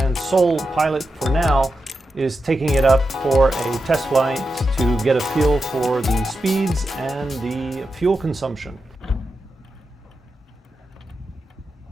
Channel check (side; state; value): both; normal; correlation 0.89